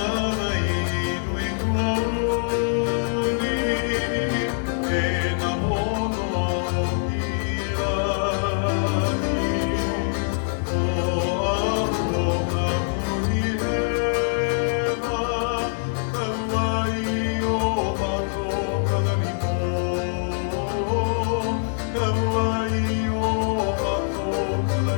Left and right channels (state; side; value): silent; right; digital silence